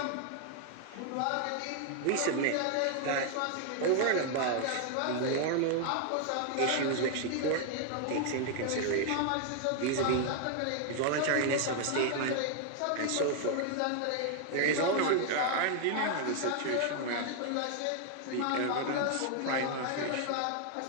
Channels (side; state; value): both; different; correlation 0.00